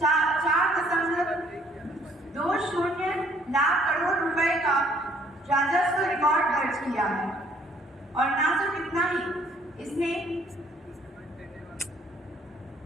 4.20 लाख करोड़ रुपए का राजस्व रिकॉर्ड दर्ज किया है। और ना सिर्फ इतना ही, इसने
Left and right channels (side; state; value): both; normal; correlation 0.62